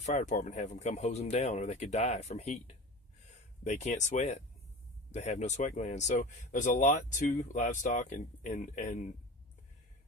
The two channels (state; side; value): normal; both; correlation 0.34